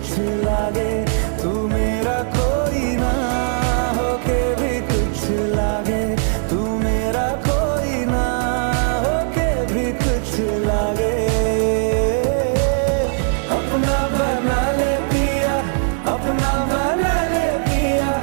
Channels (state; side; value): silent; left; 66 dB below the other